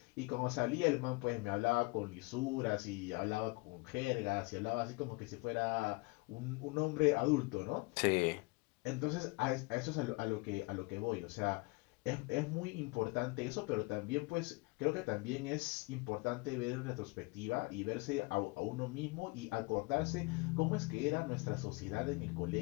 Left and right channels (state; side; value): quieter; right; 26.6 dB